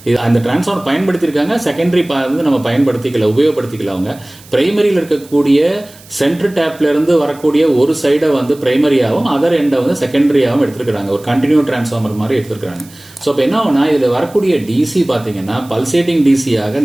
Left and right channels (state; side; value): noise; right; hiss, 23 dB below the sound